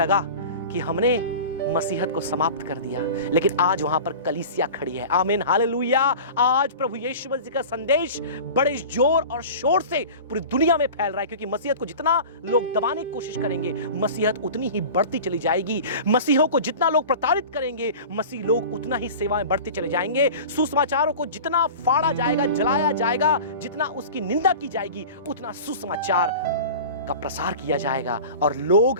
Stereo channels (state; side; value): inverted; both; correlation -0.36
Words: कि हमने मसीहत को समाप्त कर दिया। लेकिन आज वहां पर कलीसिया खड़ी है। आमीन, हालेलुया। आज प्रभु यीशु मसीह का संदेश बड़े जोर और शोर से पूरी दुनिया में फैल रहा है, क्योंकि मसीहत को जितना लोग दबाने की कोशिश करेंगे, मसीहत उतनी ही बढ़ती चली जाएगी। मसीहों को जितना लोग प्रताड़ित करेंगे, मसीह लोग उतना ही सेवाएं बढ़ते चले जाएंगे। सुसमाचारों को जितना फाड़ा जाएगा, जलाया जाएगा, जितना उसकी निंदा की जाएगी, उतना सुसमाचार का प्रसार किया जाएगा और लोग